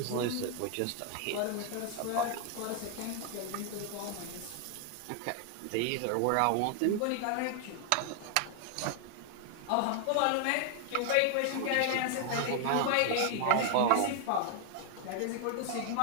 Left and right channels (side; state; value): both; different; correlation 0.00